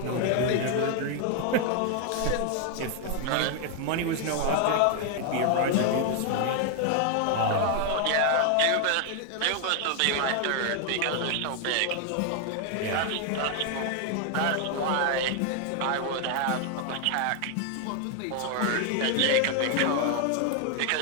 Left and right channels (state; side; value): different; both; correlation 0.00